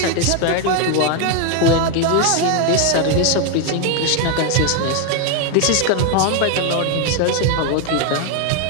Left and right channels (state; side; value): different; both; correlation 0.01